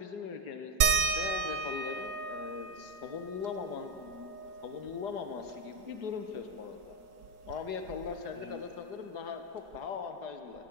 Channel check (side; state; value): left; late; 5.4 ms